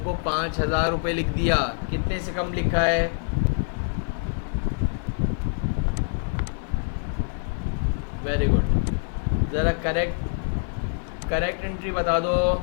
को 5,000 रुपये लिख दिया। कितने से कम लिखा है? Very good. ज़रा करेक्ट एंट्री बता दो।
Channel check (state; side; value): silent; right; 62 dB below the other